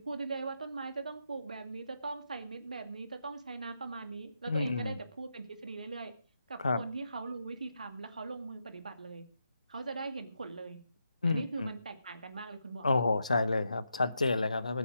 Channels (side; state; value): both; inverted; correlation -0.83